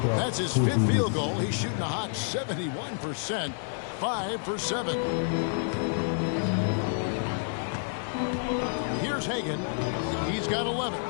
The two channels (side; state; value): right; silent; digital silence